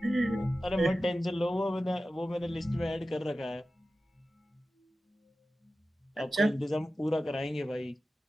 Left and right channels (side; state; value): both; normal; correlation 0.94